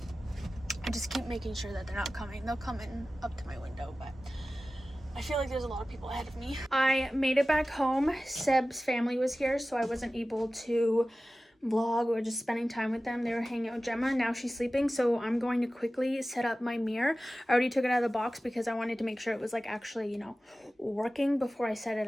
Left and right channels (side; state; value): both; normal; correlation 0.96